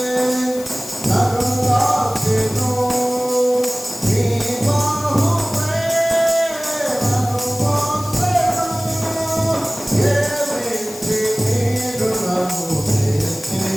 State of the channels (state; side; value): noise; left; hiss, 15 dB below the sound